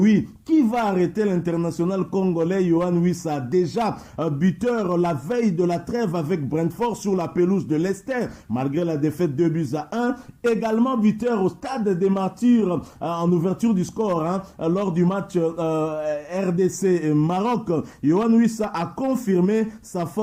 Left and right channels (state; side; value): identical; both; correlation 1.00